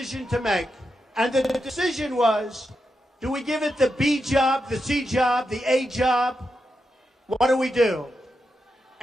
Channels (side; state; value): both; normal; correlation 0.87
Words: to make. And the decision was, do we give it the B job, the C job, the A job? What do we do?